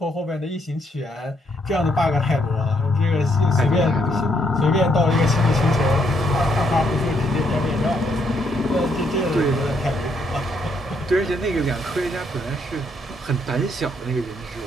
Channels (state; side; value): normal; both; correlation 0.73